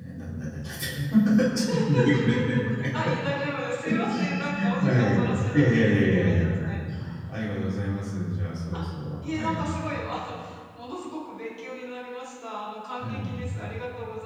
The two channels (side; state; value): both; identical; correlation 1.00